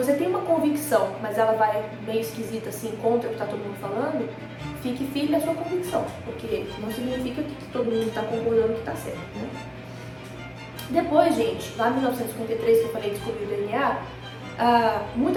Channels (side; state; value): both; identical; correlation 1.00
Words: tem uma convicção, mas ela vai meio esquisita assim, contra o que está todo mundo falando, fique firme na sua convicção, porque não significa que todo mundo está concordando que está certo, né? Depois, gente, lá em 1953, que eu falei descobrir o DNA,